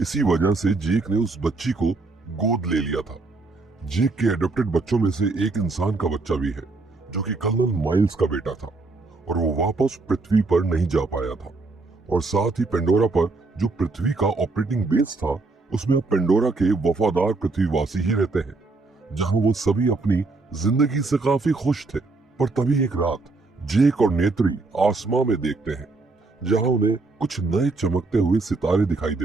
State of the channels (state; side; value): quieter; left; 3.6 dB